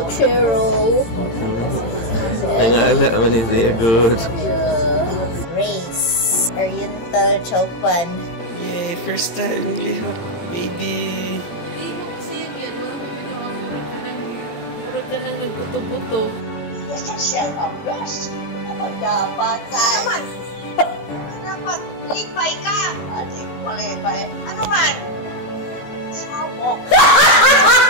Nangala man siya good. Race. Oriental Chowpan. Yay, first time lihok, baby. Murag ka nang nagbuto-buto. Yes, siya ka. Yes. Ano dapat? Naman. Dapat lipay ka. Ate, malipay. Ano man? Sawok.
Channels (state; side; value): late; right; 18 ms